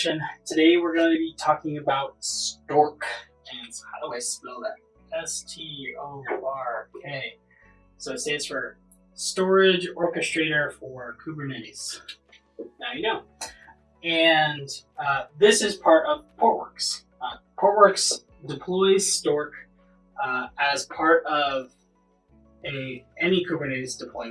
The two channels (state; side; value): identical; both; correlation 1.00